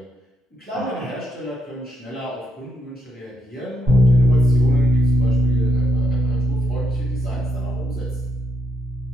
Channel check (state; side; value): normal; both; correlation 0.77